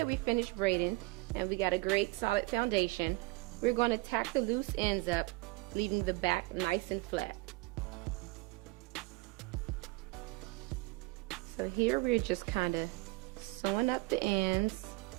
we finished braiding and we got a great solid foundation, we're going to tack the loose ends up, leaving the back nice and flat. So here we're just kind of sewing up the ends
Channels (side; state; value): left; quieter; 22.9 dB